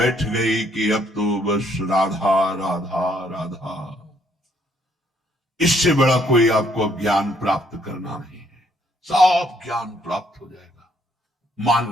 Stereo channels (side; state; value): both; normal; correlation 0.68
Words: गई कि अब तो बस राधा राधा राधा, इससे बड़ा कोई आपको ज्ञान प्राप्त करना नहीं है। सब ज्ञान प्राप्त हो जाएगा। मान